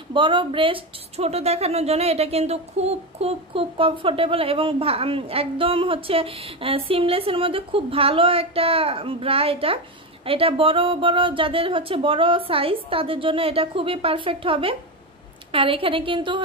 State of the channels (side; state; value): both; normal; correlation 0.14